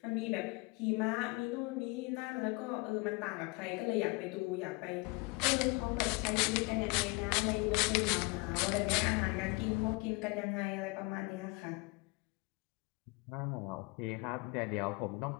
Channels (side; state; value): right; quieter; 27.6 dB